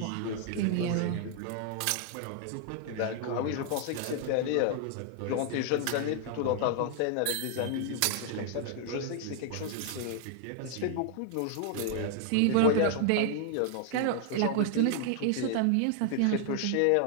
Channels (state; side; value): different; both; correlation 0.00